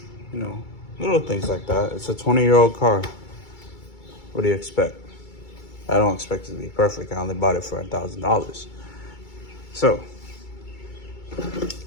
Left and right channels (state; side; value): late; right; 2.3 ms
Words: You know, little things like that. It's a 20-year-old car. What do you expect? I don't expect it to be perfect. I only bought it for $1,000. So,